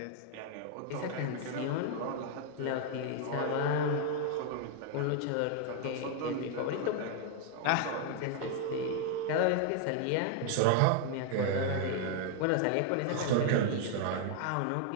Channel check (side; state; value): both; different; correlation 0.00